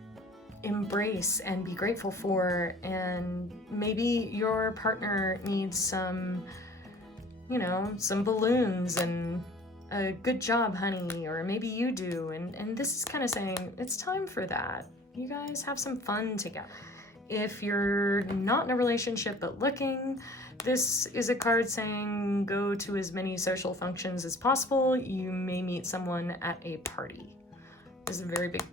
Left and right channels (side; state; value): both; normal; correlation 0.49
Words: embrace and be grateful for. And maybe your partner needs some, you know, some balloons and a good job, honey, or maybe you do. And this is kind of saying it's time for that. You guys have some fun together. If you're not in a relationship but looking, this is a card saying go to as many social functions as possible. You may meet someone at a party. This is a very big